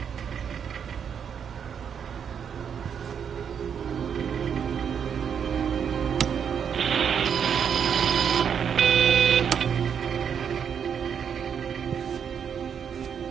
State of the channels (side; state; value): left; quieter; 7.6 dB